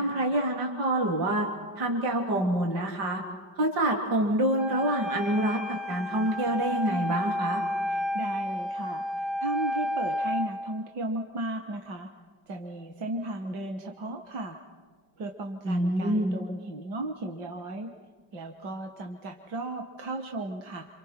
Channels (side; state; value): left; late; 5.1 ms